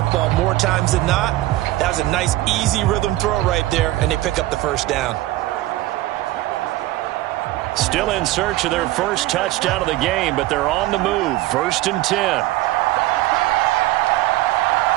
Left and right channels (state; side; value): quieter; left; 16.9 dB